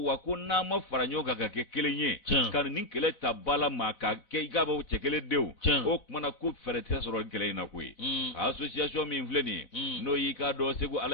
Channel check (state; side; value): late; right; 4.0 ms